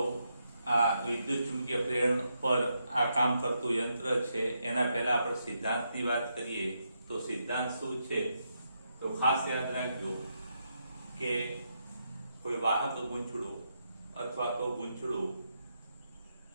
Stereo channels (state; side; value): inverted; both; correlation -0.82